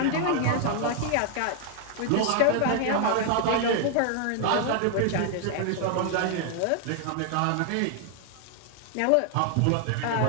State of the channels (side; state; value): both; different; correlation 0.00